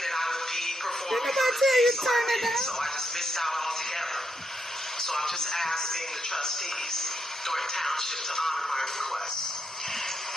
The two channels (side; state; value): both; normal; correlation 0.80